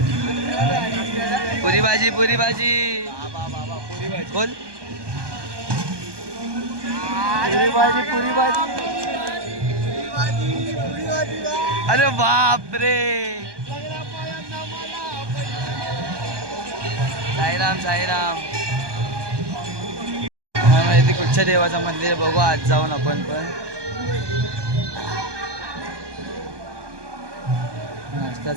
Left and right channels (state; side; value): late; left; 1.2 ms